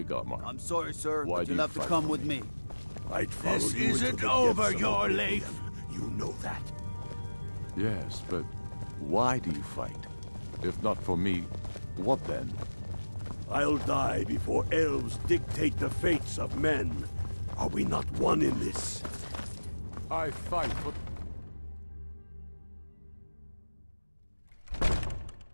Godmar. I'm sorry, sir, Why but do you'll you have to fight come for with me. I'd follow This you into isn't the over depths of your oblivion. life. You know that. Yes, but why do you fight? If not for me, what then? I'll die before elves dictate the fates of men. Are we not one in this? I fight for...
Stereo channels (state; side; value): inverted; both; correlation -1.00